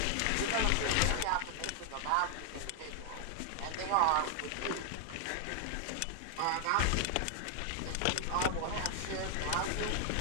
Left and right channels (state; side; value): different; both; correlation 0.00